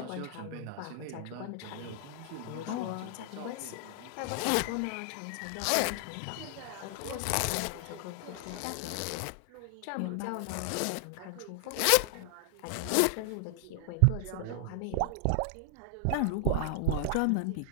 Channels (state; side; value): different; both; correlation 0.00